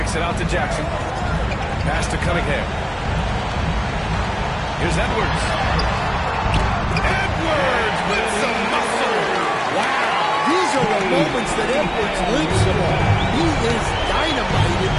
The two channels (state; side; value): identical; both; correlation 1.00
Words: it out to Jackson. Pass to Cunningham. Here's Edwards. Edwards with some muscle. Wow, these are the moments that Edwards lives for. He is dynamite in